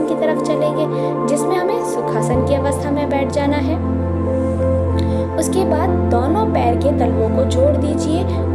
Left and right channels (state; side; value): identical; both; correlation 1.00